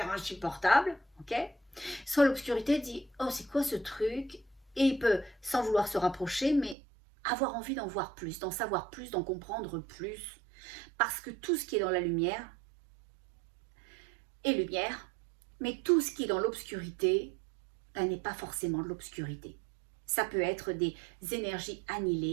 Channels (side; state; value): left; drops out; at 6.8 s